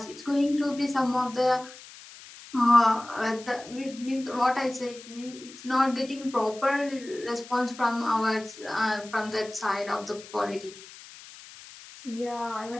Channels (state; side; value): noise; left; hiss, 18 dB below the sound